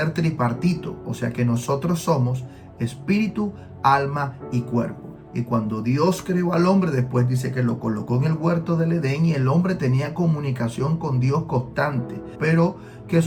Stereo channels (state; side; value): identical; both; correlation 1.00